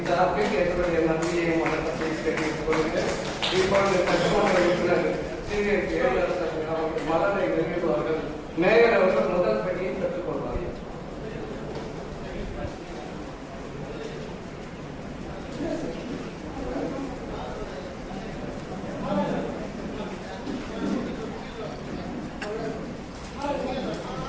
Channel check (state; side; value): identical; both; correlation 1.00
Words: சார்பில் என்னுடைய நன்றியையும் வணக்கத்தையும் தெரிவித்துக் கொள்கிறேன். இப்பொழுது சட்டமன்ற உறுப்பினர் எழிலரசன் அவர்கள் மலரை வெளியிடுவார்கள். மேயர் அவர்கள் முதல் படியை பெற்றுக் கொள்வார்கள்.